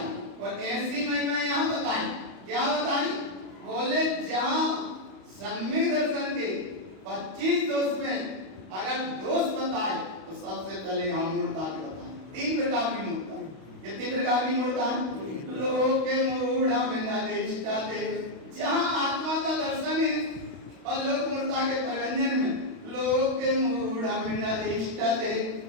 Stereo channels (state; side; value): late; left; 32 ms